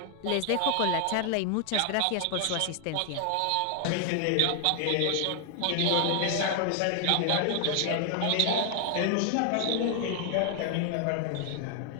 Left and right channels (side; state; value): both; different; correlation 0.00